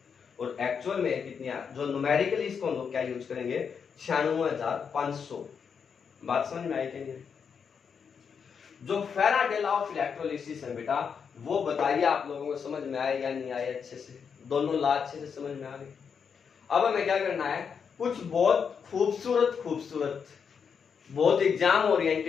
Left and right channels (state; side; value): quieter; right; 6.5 dB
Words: और एक्चुअल में कितनी, जो न्यूमेरिकली इसको हम लोग क्या यूज करेंगे, 96,500। बात समझ में आई कि नहीं? जो फैराडे लॉ ऑफ इलेक्ट्रोलिसिस है बेटा, वो बताइए आप लोगों को समझ में आए या नहीं आए अच्छे से, दोनों लॉ अच्छे से समझ में आ गए। अब हमें क्या करना है, कुछ बहुत खूबसूरत बहुत एग्जाम